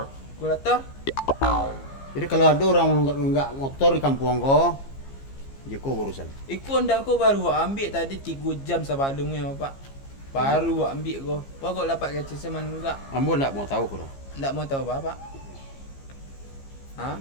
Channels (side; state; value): right; late; 15 ms